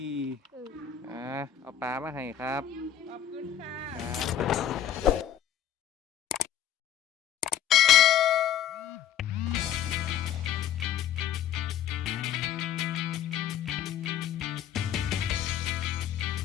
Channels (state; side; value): quieter; right; 10.1 dB